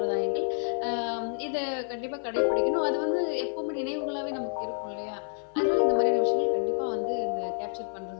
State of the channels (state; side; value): silent; right; 59 dB below the other